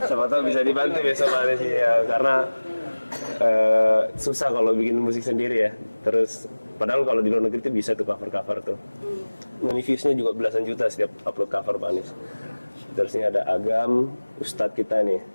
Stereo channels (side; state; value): both; inverted; correlation -1.00